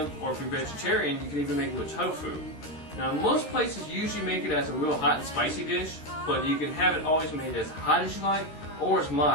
or if you're vegetarian, you can even make it with tofu. Now most places usually make it as a real hot and spicy dish, but you can have it always made as hot as you like, or as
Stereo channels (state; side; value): late; right; 13 ms